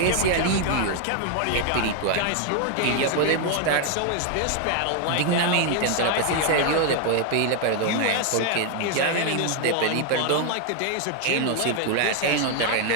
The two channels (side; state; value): both; different; correlation 0.01